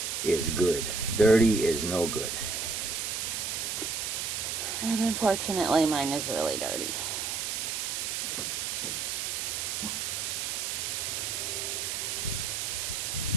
good. Dirty is no good. And unfortunately, mine is really dirty.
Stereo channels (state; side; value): noise; right; hiss, 2 dB below the sound